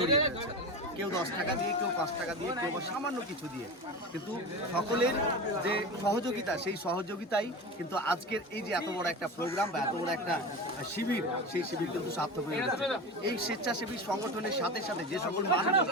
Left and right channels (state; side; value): normal; both; correlation 0.26